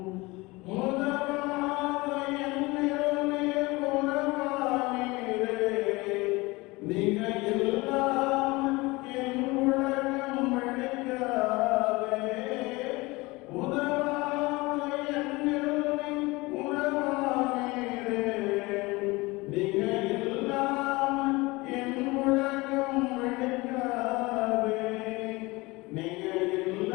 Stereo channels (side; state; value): right; quieter; 22.9 dB